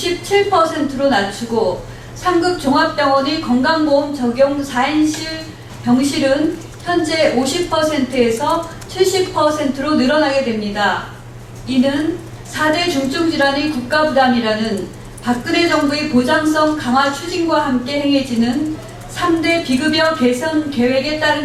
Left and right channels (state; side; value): identical; both; correlation 1.00